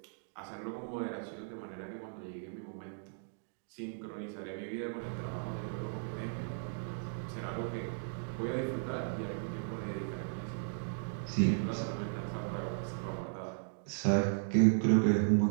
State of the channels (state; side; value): silent; left; digital silence